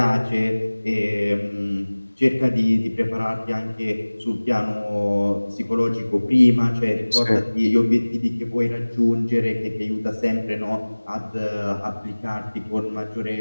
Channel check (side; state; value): both; inverted; correlation -1.00